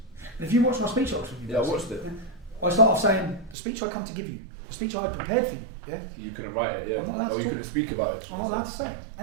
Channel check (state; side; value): drops out; left; at 3.6 s